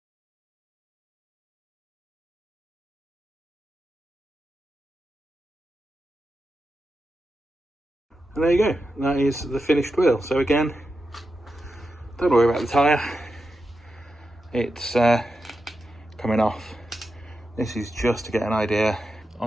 And there you go, that is the finished wheel. So again, don't worry about the tyre, it's coming off. This is just to get an idea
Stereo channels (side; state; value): both; normal; correlation 0.89